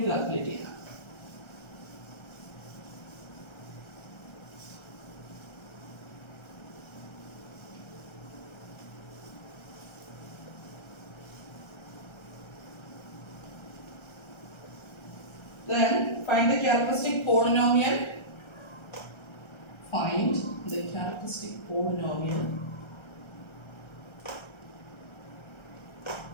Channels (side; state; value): right; late; 1.3 ms